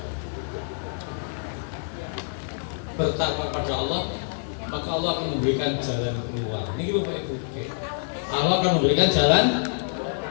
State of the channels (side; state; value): right; silent; digital silence